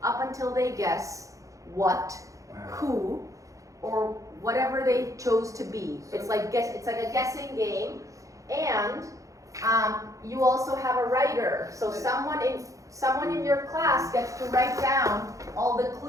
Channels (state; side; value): late; left; 0.16 ms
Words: up until they guess what, who, or whatever they chose to be. It's like a guessing game. And you also have a writer. So someone in your class gets to write down all the